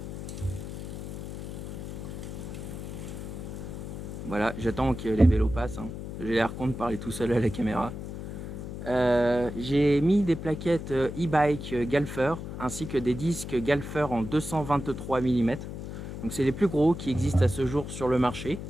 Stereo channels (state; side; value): noise; left; hum, 8 dB below the sound